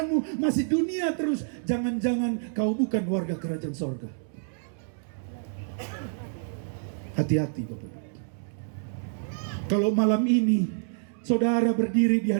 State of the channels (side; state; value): left; silent; 59 dB below the other